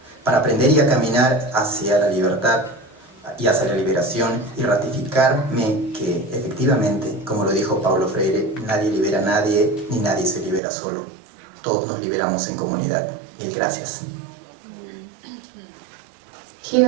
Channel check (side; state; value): left; drops out; at 10.6 s